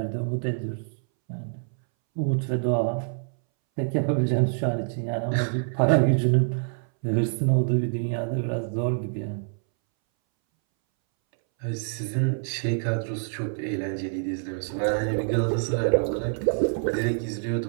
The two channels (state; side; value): silent; left; 61 dB below the other